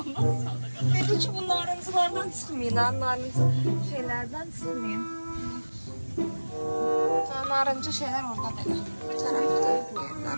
Dedi ki bu narıncılardan çıkmayın ha. Narıncı şeylerden çıkmayın. narıncı şeyler orada belə. Bu tərəfdə bu yerlər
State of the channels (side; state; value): both; inverted; correlation -1.00